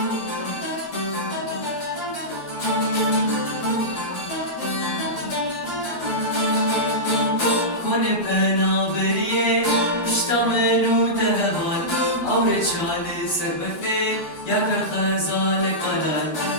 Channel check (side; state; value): right; late; 12 ms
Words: کنه پنابریه پشتا منو دهوال اور چال سر بفه یک خزال کلال